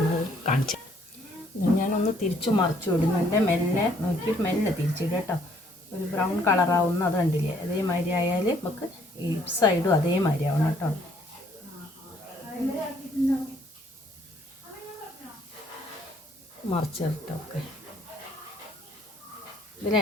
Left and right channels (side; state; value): both; normal; correlation 0.64